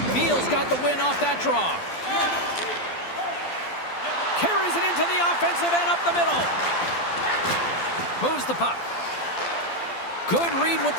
Biel's got the win off that draw. Carries it into the offensive end up the middle. Moves the puck. Good read with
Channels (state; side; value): late; right; 12 ms